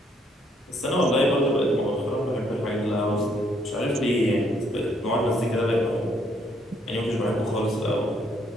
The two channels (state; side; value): normal; both; correlation 0.69